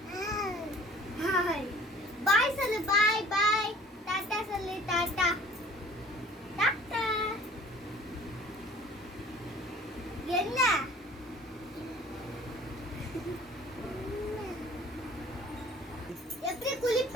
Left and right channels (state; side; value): normal; both; correlation 0.50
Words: ஹாய். பை சொல்லு. Bye bye. டாடா சொல்லு. டாடா. டாடா. என்ன? எப்படி